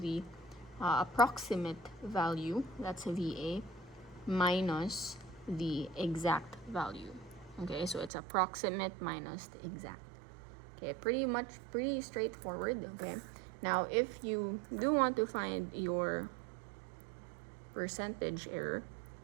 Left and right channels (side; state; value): left; drops out; at 8.1 s